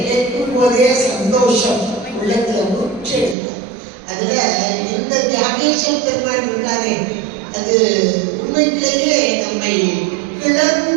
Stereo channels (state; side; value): drops out; left; at 3.4 s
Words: கேட்கும் போதே சந்தோஷம் உள்ளத்துல முற்றெடுக்கும். அதுல இந்த தியாகேஸ்வர பெருமான் இருக்காரே அது உண்மையிலேயே நம்மை